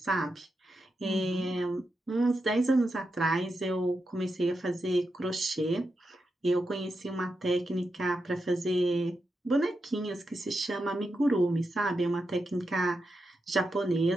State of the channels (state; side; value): normal; both; correlation 0.87